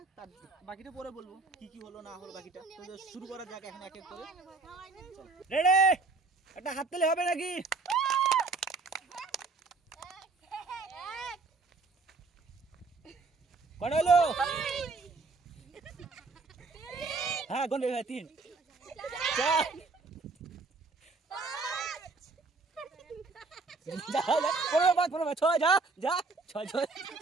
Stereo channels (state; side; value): quieter; left; 3.9 dB